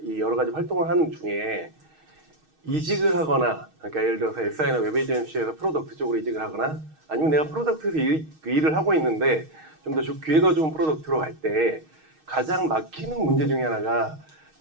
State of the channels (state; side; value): late; left; 6.4 ms